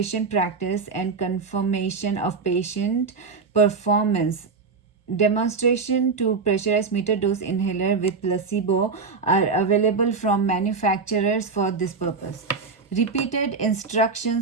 practice and confirmation of patient performance. Demonstration to pressurized meter dose inhaler with placebo are available from manufacturers for this purpose. Repeated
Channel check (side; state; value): left; quieter; 4.7 dB